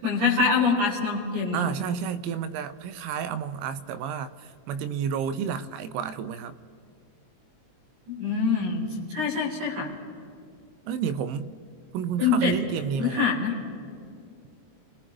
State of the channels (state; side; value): late; left; 23 ms